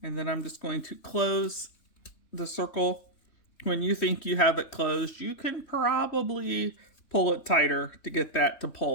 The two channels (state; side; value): late; right; 3.1 ms